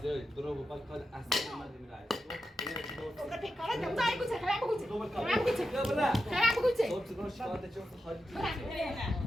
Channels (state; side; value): normal; both; correlation 0.89